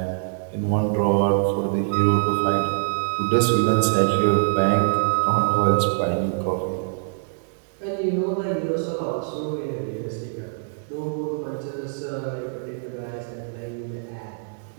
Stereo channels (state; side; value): silent; left; 58 dB below the other